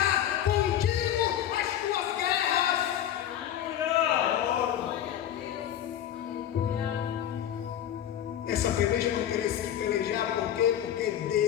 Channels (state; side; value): quieter; right; 10.8 dB